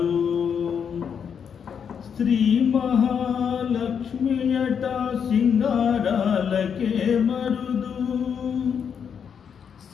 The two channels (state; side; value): quieter; right; 7.3 dB